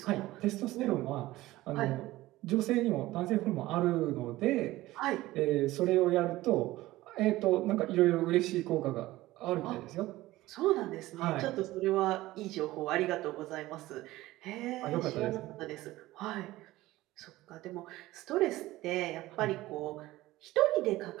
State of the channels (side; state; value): left; quieter; 17.3 dB